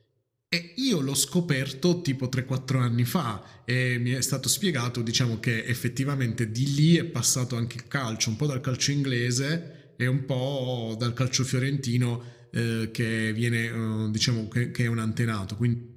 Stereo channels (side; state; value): both; identical; correlation 1.00